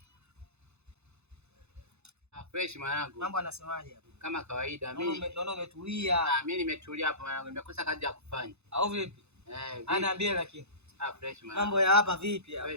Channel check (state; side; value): late; left; 0.81 ms